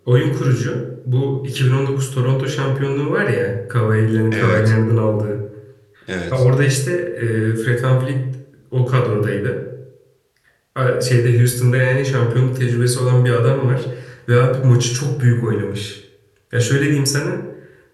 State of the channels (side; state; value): both; identical; correlation 1.00